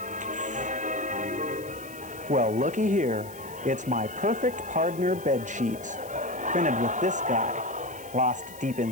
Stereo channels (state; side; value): noise; left; hiss, 19 dB below the sound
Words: Well, looky here. It's my perfect partner bed sheets, printed with this guy, lost deep